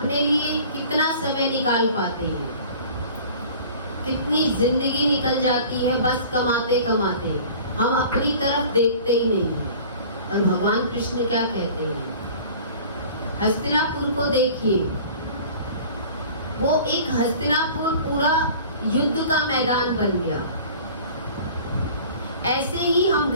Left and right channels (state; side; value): inverted; both; correlation -0.45